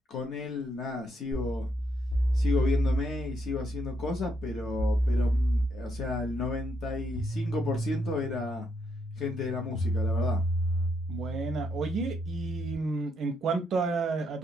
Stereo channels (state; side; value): normal; both; correlation 0.76